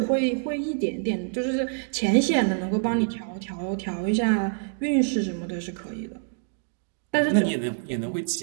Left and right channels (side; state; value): left; silent; 61 dB below the other